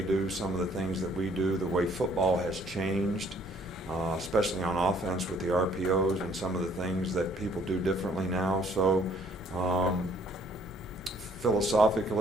do, some of the things that we do, the way football has changed. Especially on offense with the RPOs and some of the things that people do differently now. So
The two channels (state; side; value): noise; right; hum, 30 dB below the sound